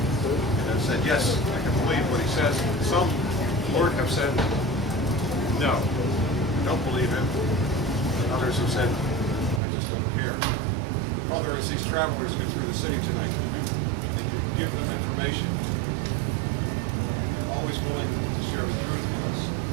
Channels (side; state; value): left; drops out; at 9.6 s